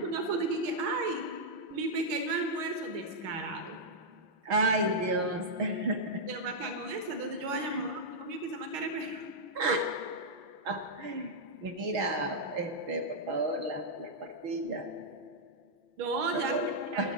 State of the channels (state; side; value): late; left; 6.4 ms